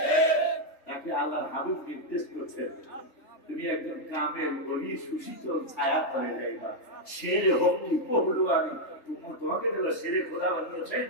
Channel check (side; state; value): right; late; 3.5 ms